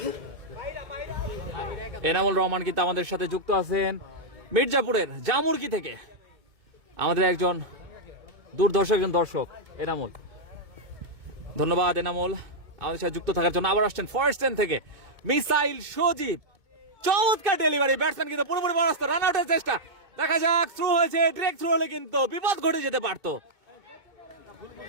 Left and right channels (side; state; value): left; late; 2.2 ms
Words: এনামুল রহমান কিন্তু আমাদের সাথে যুক্ত আছেন মির্জাপুরের জামুরকি থেকে, আমাদের একজন দুর্ধর্ষ একজন দর্শক এনামুল। ধন্যবাদ এনামুল আমাদের সাথে যুক্ত থাকার জন্য। আবার আসছেন ফার্স্ট হ্যান্ড থেকে মিসাইল সজীব, চমৎকার ডেলিভারি, ব্যাটসম্যান কিন্তু পুরোপুরি পরাস্ত, রান আউটের চেষ্টা। দেখা যাক, থ্রু হয়েছে, ডিরেক্ট থ্রু হলে কিন্তু বিপদ ঘটে যেতে পারতো।